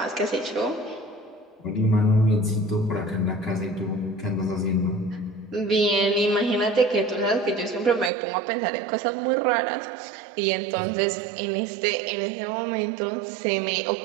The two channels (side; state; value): left; drops out; at 8.1 s